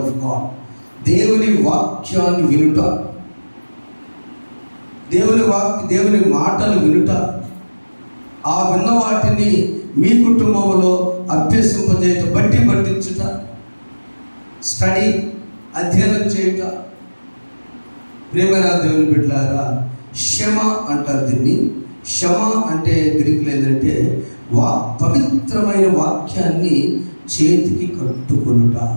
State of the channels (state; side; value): inverted; both; correlation -1.00